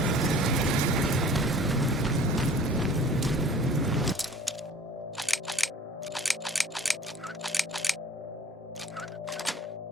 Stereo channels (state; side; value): normal; both; correlation 0.48